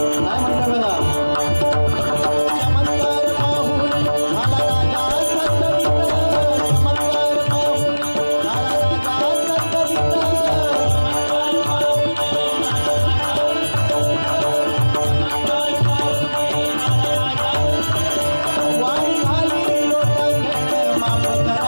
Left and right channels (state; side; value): inverted; both; correlation -1.00